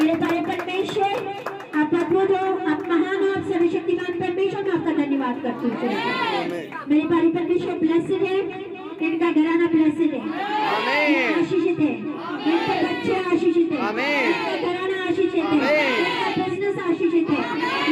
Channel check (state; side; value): identical; both; correlation 1.00